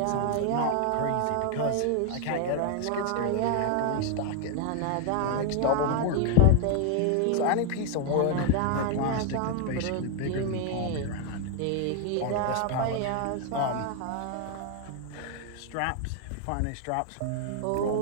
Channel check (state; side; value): different; both; correlation 0.00